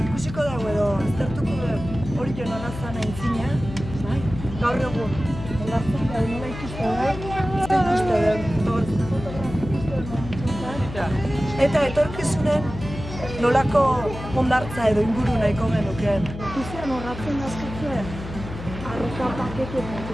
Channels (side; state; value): left; noise; hum, 10 dB below the sound